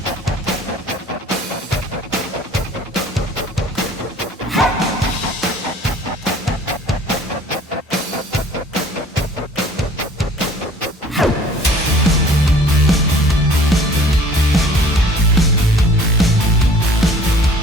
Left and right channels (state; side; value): normal; both; correlation 0.51